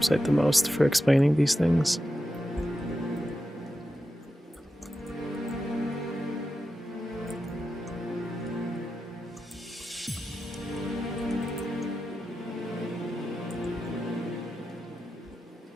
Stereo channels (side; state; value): both; normal; correlation 0.90